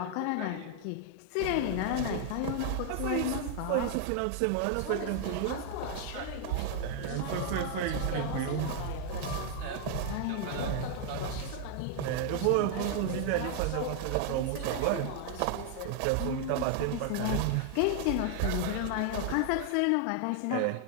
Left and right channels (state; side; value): different; both; correlation 0.00